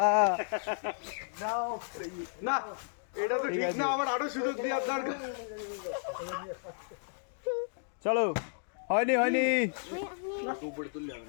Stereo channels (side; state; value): right; silent; digital silence